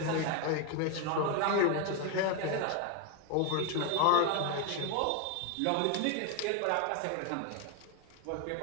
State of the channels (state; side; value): different; both; correlation 0.01